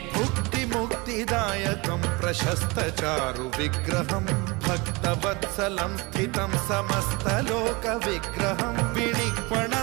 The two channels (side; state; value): left; quieter; 26.0 dB